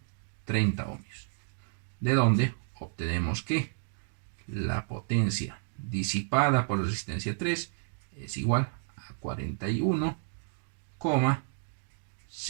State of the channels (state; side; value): silent; left; digital silence